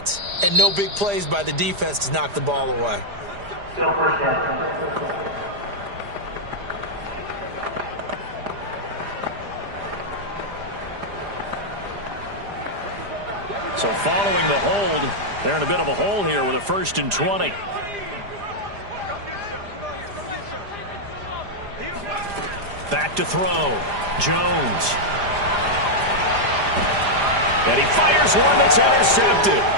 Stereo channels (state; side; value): late; left; 4.9 ms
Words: and no big plays by the defense to knock the ball away. Still first down. So following the hold, they're in a bit of a hole here with a 1st and 20. Back to throw. Jones. And he fires one that's intercepted.